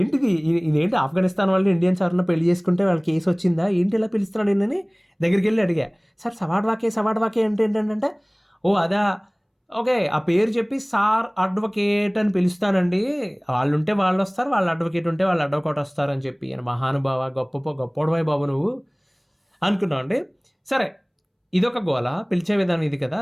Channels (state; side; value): identical; both; correlation 1.00